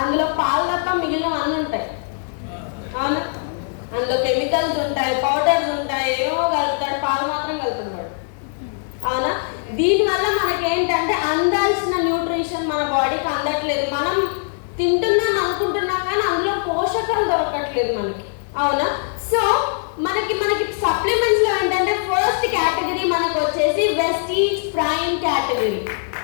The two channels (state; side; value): silent; right; digital silence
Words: అందులో పాలు తప్ప మిగిలిన అన్నీ ఉంటాయి. అవునా? అందులో కెమికల్స్ ఉంటాయి, పౌడర్స్ ఉంటాయి, ఏమో కలుపుతాడు, పాలు మాత్రం కలుపుతున్నాడు. అవునా? దీనివల్ల మనకి ఏంటంటే అందాల్సిన న్యూట్రిషన్ మన బాడీకి అందట్లేదు. మనం తింటున్నాం అనుకుంటున్నాం కానీ అందులో పోషకాలు దొరకట్లేదు మనకి. అవునా? సో మనకి సప్లిమెంట్స్ లో ఏంటంటే ఫస్ట్ కేటగిరీ మనకు వచ్చేసి Vestige prime category.